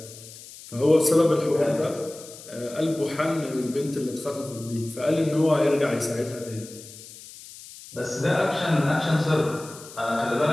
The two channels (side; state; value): left; noise; hiss, 17 dB below the sound